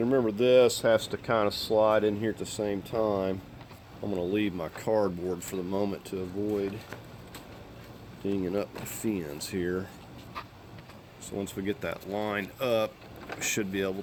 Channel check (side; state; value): both; identical; correlation 1.00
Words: remember, this has to kind of slide in here at the same time. I'm going to leave my cardboard for the moment to avoid dinging up my fins here. So once we get that lined up, we should be able